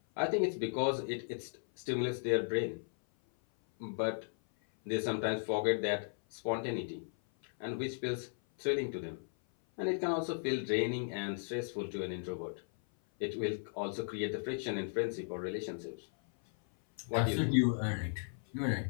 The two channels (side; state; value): right; silent; 54 dB below the other